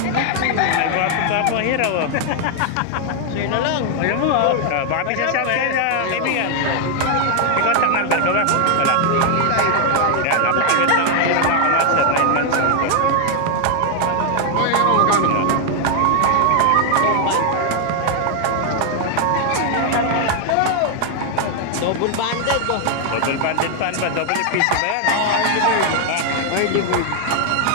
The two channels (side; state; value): both; different; correlation 0.00